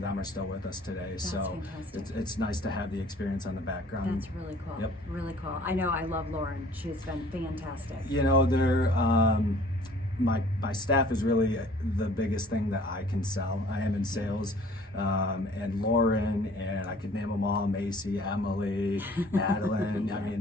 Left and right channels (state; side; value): normal; both; correlation 0.53